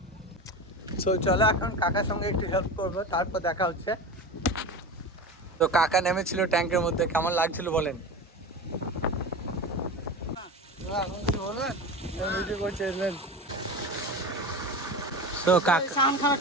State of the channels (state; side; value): normal; both; correlation 0.28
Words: সো চলো এখন কাকার সঙ্গে একটু হেল্প করবো, তারপর দেখা হচ্ছে। তো কাকা নেমেছিল ট্যাঙ্কের মধ্যে, কেমন লাগছিল বলেন?